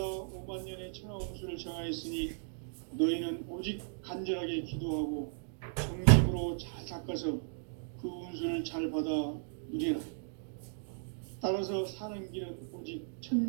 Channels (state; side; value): silent; left; digital silence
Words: 5만 년의 천하 운수를 정하였으니 너희는 오직 간절하게 기도하고 정심으로 잘 닦아서 그 운수를 잘 받아 누리라. 따라서 사는 길은 오직